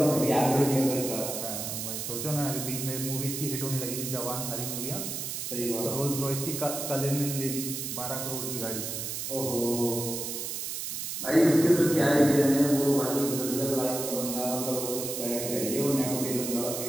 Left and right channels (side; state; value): right; noise; hiss, 4 dB below the sound